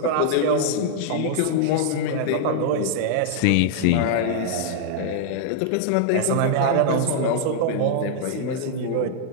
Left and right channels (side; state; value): both; different; correlation -0.01